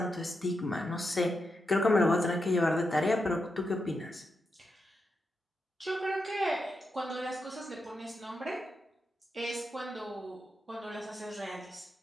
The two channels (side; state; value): both; normal; correlation 0.86